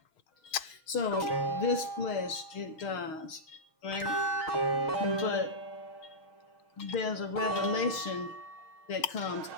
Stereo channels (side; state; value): right; late; 6.4 ms